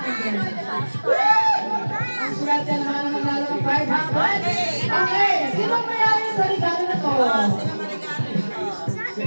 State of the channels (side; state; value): both; inverted; correlation -1.00